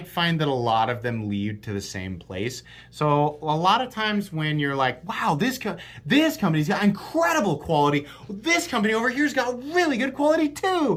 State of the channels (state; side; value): identical; both; correlation 1.00